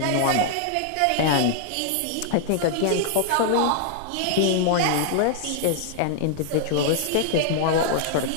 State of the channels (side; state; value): both; different; correlation -0.01